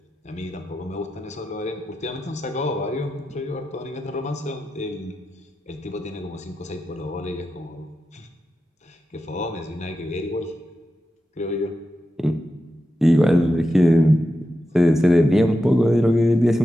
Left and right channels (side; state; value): both; normal; correlation 0.90